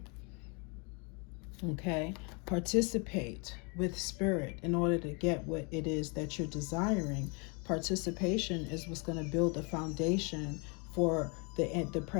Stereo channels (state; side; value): quieter; right; 32.7 dB